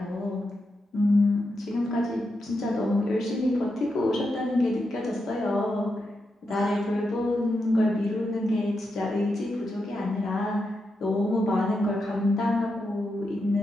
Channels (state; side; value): normal; both; correlation 0.86